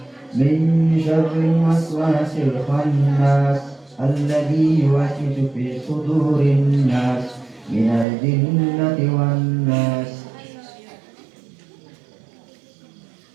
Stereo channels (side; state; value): left; drops out; at 8.1 s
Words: min syarril waswasil khannas, alladzi yuwaswisu fi sudurin nas, minal jinnati wan nas.